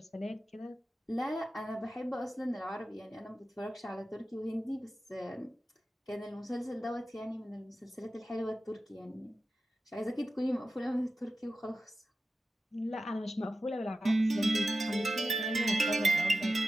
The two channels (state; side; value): normal; both; correlation 0.92